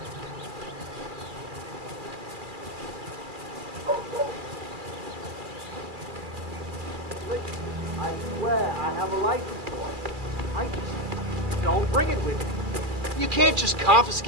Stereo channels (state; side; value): late; left; 2.4 ms